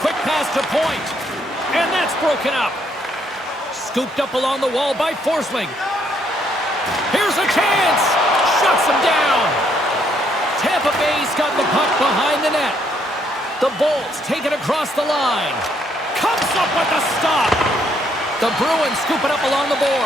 quick pass to point. And that's broken up. Scooped up along the wall by Forsling. Here's a chance. Shuts him down. Tampa Bay's got the puck behind the net. The Bolts take it across the line. Comes up with a stop. The Bruins scoop it up along the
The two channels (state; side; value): normal; both; correlation 0.71